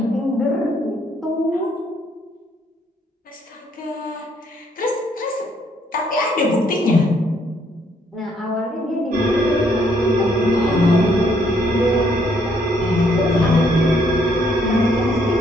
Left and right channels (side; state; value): both; normal; correlation 0.69